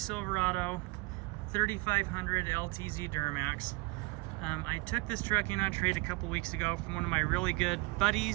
3500 LTZ Duramax. I took this truck in on trade a couple weeks ago from one of my really good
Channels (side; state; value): left; quieter; 25.8 dB